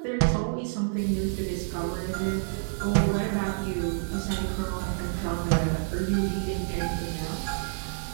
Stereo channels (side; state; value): left; silent; digital silence